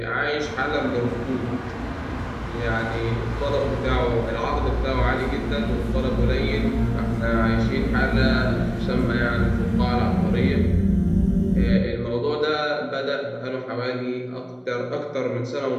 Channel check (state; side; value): identical; both; correlation 1.00